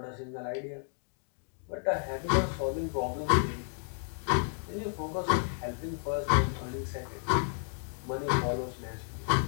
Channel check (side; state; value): right; silent; 56 dB below the other